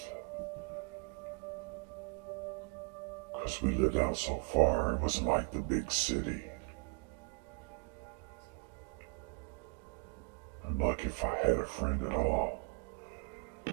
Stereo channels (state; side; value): quieter; left; 35.9 dB